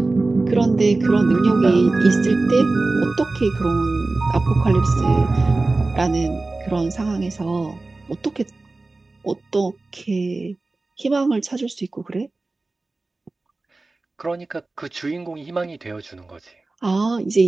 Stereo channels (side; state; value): left; quieter; 3.3 dB